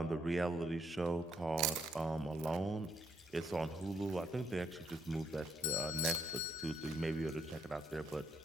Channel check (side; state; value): both; normal; correlation 0.73